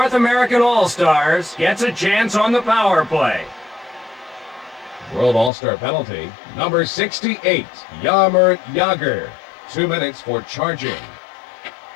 American All-Stars gets a chance on the power play. World All-Star penalty, number 68, Jaromir Jagr. 2 minutes for charging.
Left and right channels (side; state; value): right; drops out; at 5.5 s